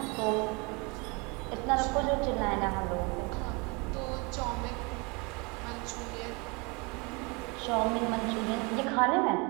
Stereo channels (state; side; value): quieter; left; 29.0 dB